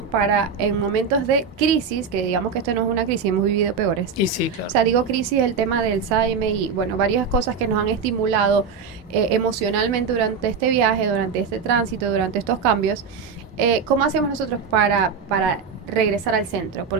para en momentos de crisis, que digamos que esto no es una crisis, hemos vivido peores? Y sí, claro. O sea, digo crisis, el tema del Alzheimer y, bueno, varias cosas que nos han estimulado emocionalmente durante este viaje, durante este tránsito, durante estos cambios. ¿Cómo hacemos nosotros para regresar al centro?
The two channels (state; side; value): quieter; left; 5.8 dB